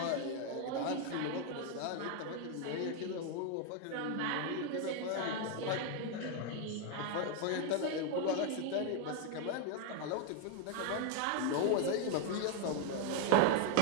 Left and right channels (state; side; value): different; both; correlation 0.01